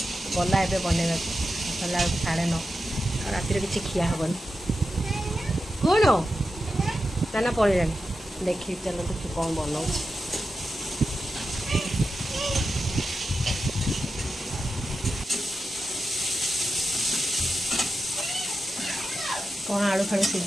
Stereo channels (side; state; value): both; normal; correlation 0.90